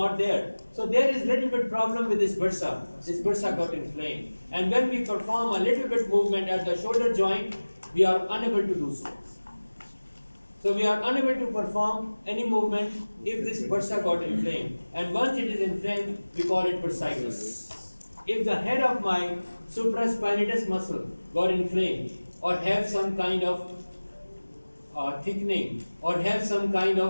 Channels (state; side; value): inverted; both; correlation -1.00